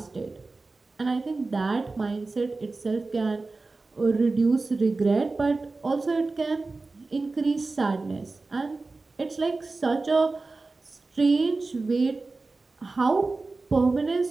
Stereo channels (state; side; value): quieter; left; 3.6 dB